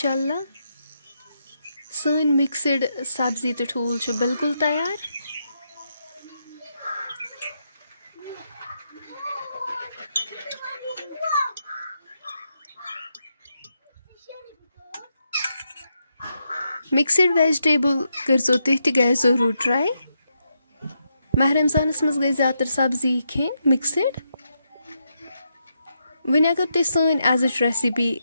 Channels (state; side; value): inverted; both; correlation -0.82